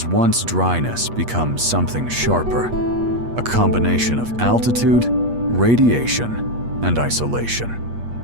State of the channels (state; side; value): late; left; 8.4 ms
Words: once dryness becomes something sharper, a combination of altitude, radiation, and isolation.